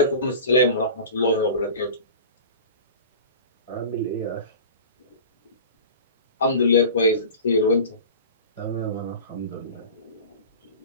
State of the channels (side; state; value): both; inverted; correlation -0.36